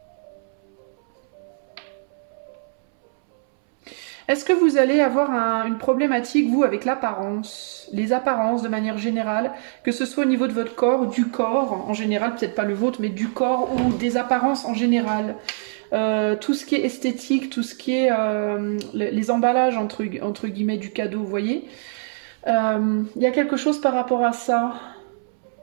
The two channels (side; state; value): left; silent; 63 dB below the other